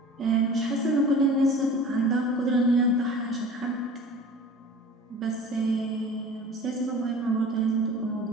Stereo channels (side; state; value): both; normal; correlation 0.41